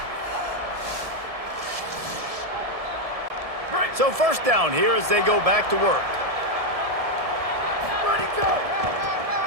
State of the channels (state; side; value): late; left; 1.7 ms